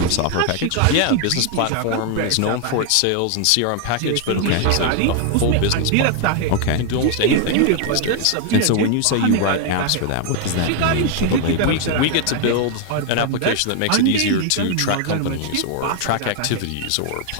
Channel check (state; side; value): different; both; correlation 0.00